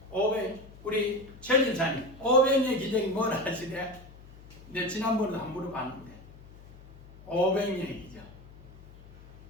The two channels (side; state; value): left; noise; hum, 20 dB below the sound